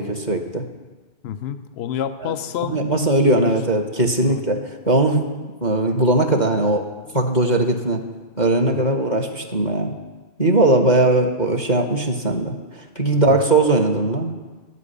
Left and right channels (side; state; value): right; late; 2.1 ms